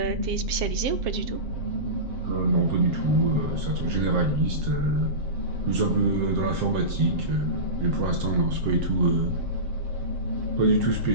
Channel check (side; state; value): left; late; 7.6 ms